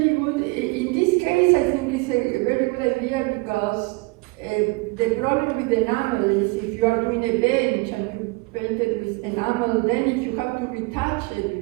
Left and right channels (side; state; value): left; quieter; 25.6 dB